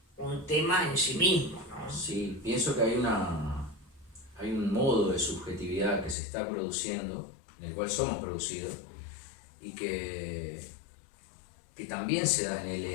un tema en sí mismo, ¿no? Sí, pienso que hay un modo de subjetividad que se está produciendo, en el cual somos producidos, y que también se da en el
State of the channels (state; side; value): drops out; right; at 6.2 s